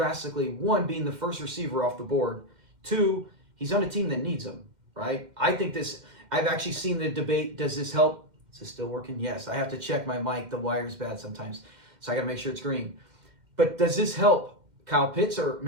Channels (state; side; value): late; left; 2.1 ms